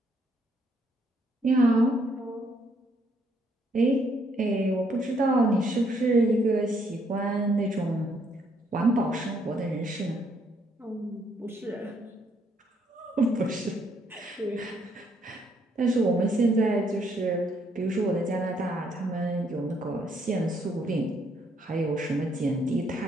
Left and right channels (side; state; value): both; normal; correlation 0.70